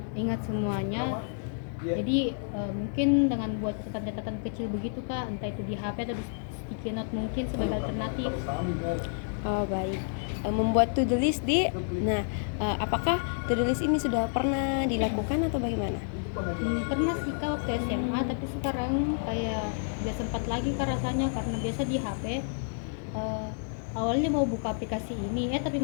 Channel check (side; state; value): right; silent; digital silence